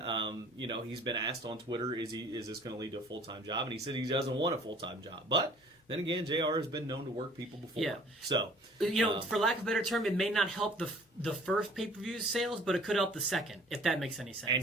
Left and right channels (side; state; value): both; normal; correlation 0.53